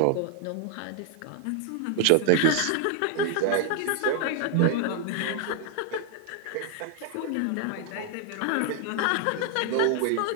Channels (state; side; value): different; both; correlation 0.00